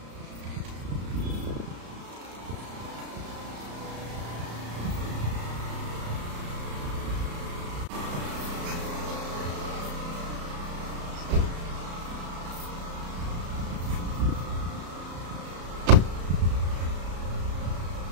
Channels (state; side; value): late; left; 34 ms